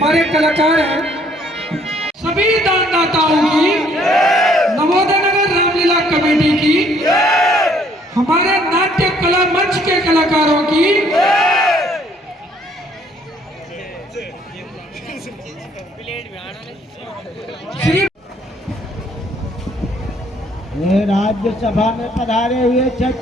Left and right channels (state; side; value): normal; both; correlation 0.63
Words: कलाकार हैं, सभी दानदाताओं की, नवोदय नगर रामलीला कमेटी की, हमारे नाट्य कला मंच के कलाकारों की, श्री राज्यसभा में पधारे हुए